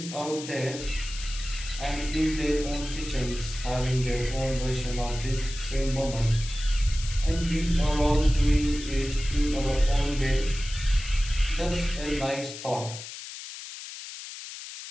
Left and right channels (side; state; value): left; noise; hiss, 11 dB below the sound